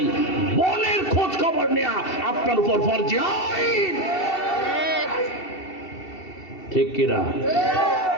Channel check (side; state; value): right; late; 2.7 ms